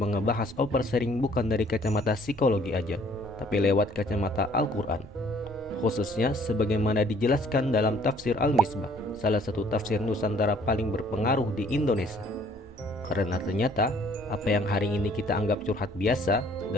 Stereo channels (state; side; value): normal; both; correlation 0.59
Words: ngebahas oversharing bukan dari kacamata psikologi aja, tapi lewat kacamata Al-Quran. Khususnya sebagaimana dijelaskan dalam tafsir Al-Misbah, salah satu tafsir Nusantara paling berpengaruh di Indonesia. Karena ternyata apa yang hari ini kita anggap curhat biasa,